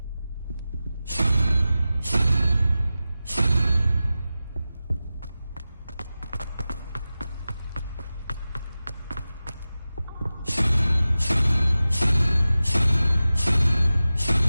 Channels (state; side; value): inverted; both; correlation -0.95